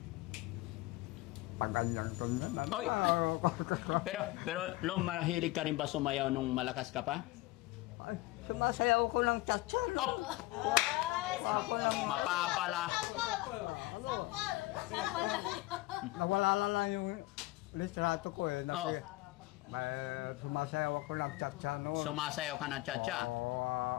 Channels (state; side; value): quieter; right; 19.8 dB